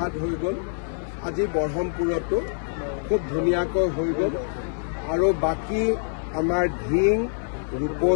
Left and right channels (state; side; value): silent; right; 62 dB below the other